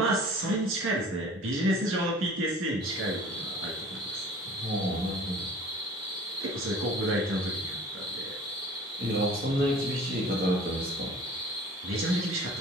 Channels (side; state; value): both; normal; correlation 0.46